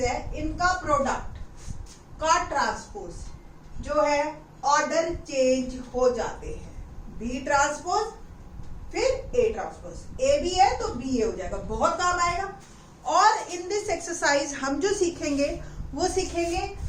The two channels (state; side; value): identical; both; correlation 1.00